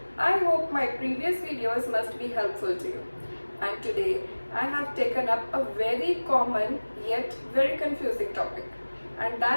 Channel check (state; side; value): inverted; both; correlation -1.00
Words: I hope my previous videos must be helpful to you. And today I have taken up a very common yet very confusing topic, and